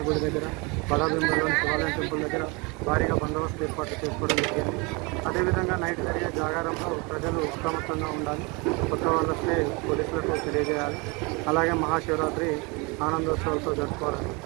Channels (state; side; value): quieter; left; 28.5 dB